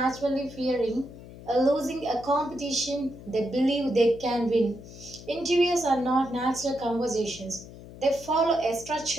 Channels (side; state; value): left; noise; hum, 16 dB below the sound